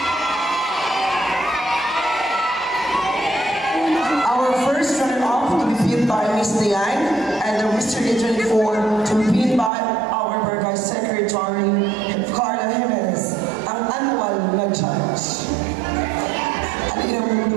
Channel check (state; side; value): drops out; left; at 9.7 s